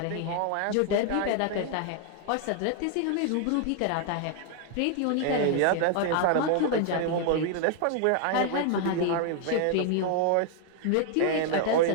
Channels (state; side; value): different; both; correlation 0.00